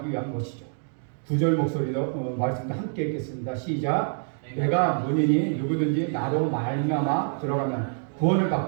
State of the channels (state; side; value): silent; left; digital silence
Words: 위한 것이죠. 9절 목소리도 말씀도 함께 읽겠습니다. 시작. 내가 문이니 누구든지 나로 말미암아 들어가면 구원을